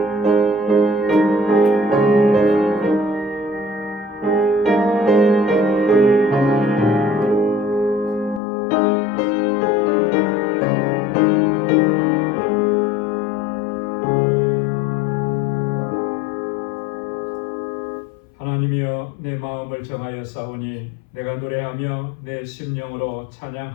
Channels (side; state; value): right; drops out; at 8.4 s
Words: 하나님이여, 내 마음을 정하여 싸우니 내가 노래하며 내 심령으로